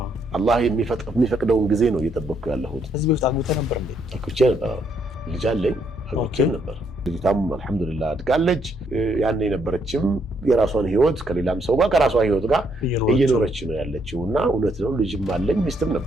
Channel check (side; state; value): both; normal; correlation 0.73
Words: አላህ የሚፈቅደውን ጊዜ ነው እየጠበቅኩ ያለሁት። ከዚህ በፊት አግብተህ ነበር እንዴ? አግብቼ ነበር። ልጅ አለኝ፣ አግብቼም ነበር። ልጅቷም አልሐምዱሊላህ አድጋለች። ያን የነበረችም የራሷን ህይወት ከሌላም ሰው ጋር ከራሷ ህይወት ጋር እየኖረች ነው ያለችው እና እውነት ነው ልጅም አለኝ ሚስትም